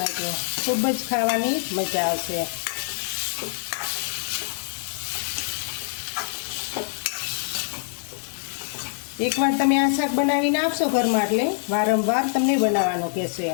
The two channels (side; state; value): right; silent; digital silence